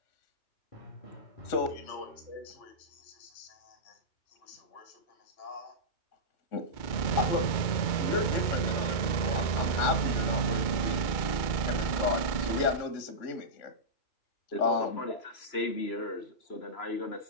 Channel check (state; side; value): late; right; 2.3 ms